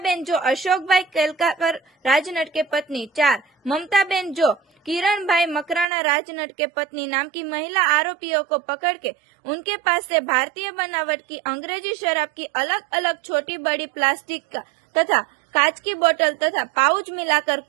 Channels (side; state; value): left; drops out; at 5.9 s